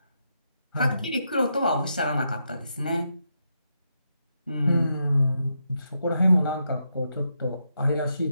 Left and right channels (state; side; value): inverted; both; correlation -0.82